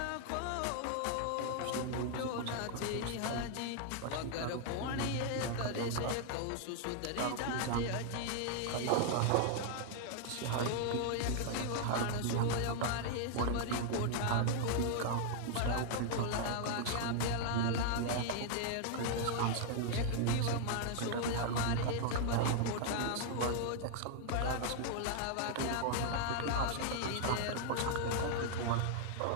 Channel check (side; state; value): both; different; correlation 0.00